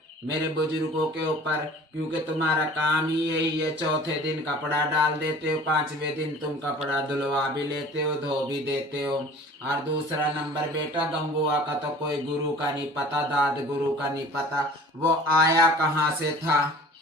मेरे बुजुर्गों के ऊपर, क्योंकि तुम्हारा काम ही यही है। चौथे दिन कपड़ा डाल देते हो, पांचवें दिन तुम कपड़ा धुलवा भी लेते हो, धो भी देते हो। और दूसरा नंबर बेटा, गंगुआ का तो कोई गुरु का नहीं पता, दाद गुरु का नहीं पता। वो आया कहाँ से था,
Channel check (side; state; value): both; normal; correlation 0.45